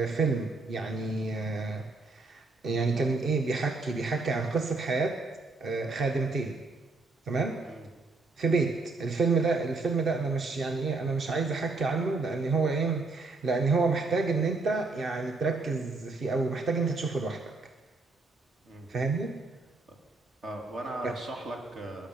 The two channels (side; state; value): left; quieter; 3.6 dB